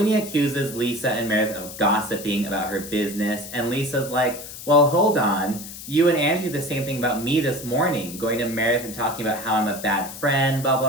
accuses Lisa and Meredith of gossiping about her business, and Lisa's like, well, hold on. You and Angie did the same thing about me this morning, going to Meredith and talking about how I'm a bad friend, blah,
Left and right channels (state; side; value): noise; left; hiss, 12 dB below the sound